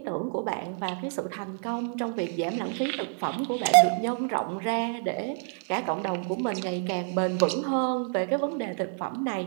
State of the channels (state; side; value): silent; left; 59 dB below the other